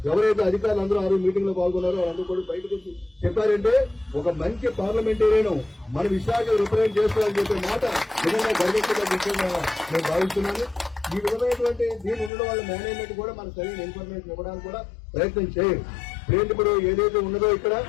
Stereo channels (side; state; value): right; drops out; at 12.3 s